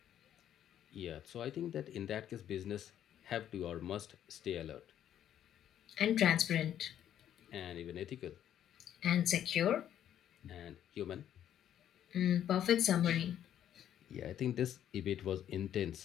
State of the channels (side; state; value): right; quieter; 10.5 dB